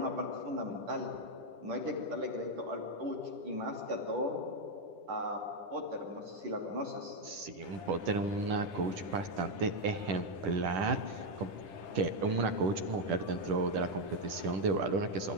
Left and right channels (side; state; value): left; late; 10 ms